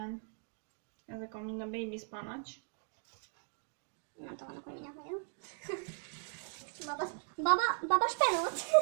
Ezek a mind a baby spinach. Nem tudom, hogy mindjárt vagyok. Baba spenót.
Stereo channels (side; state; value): left; silent; 53 dB below the other